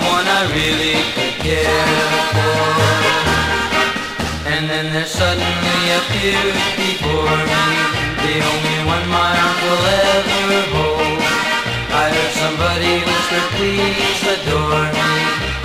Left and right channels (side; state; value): both; identical; correlation 1.00